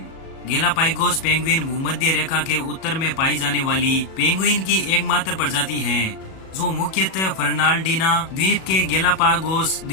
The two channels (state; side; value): late; right; 37 ms